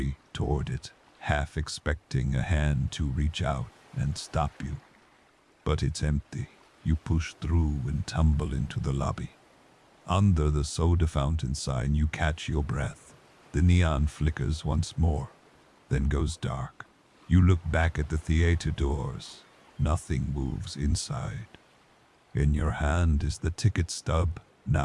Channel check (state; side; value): identical; both; correlation 1.00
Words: toward it, half expecting a hand to reach out and stop you. But it's empty. You push through and tumble into the lobby. Under the soda fountain sign, you catch your breath. The neon flickers once more, then goes dark. You look back at the theater doors. Nothing moves inside. In your hand is the ticket stub,